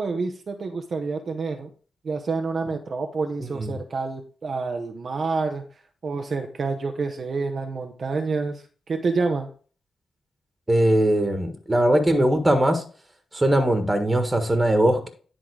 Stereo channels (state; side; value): normal; both; correlation 0.92